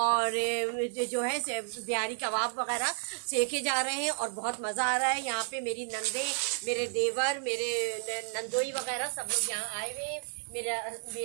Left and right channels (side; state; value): left; silent; 57 dB below the other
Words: जो है बिहारी कबाब वगैरह सेके जा रहे हैं और बहुत मज़ा आ रहा है। यहाँ पे मेरी नंदे, मेरे देवर, मेरे नंदोई वगैरह सब लोग यहाँ आए हुए हैं।